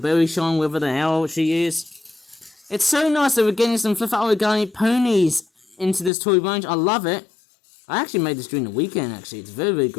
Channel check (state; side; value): drops out; right; at 6.1 s